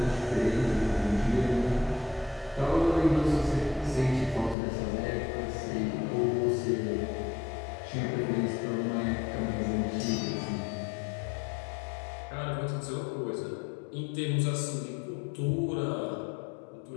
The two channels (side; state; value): right; drops out; at 4.5 s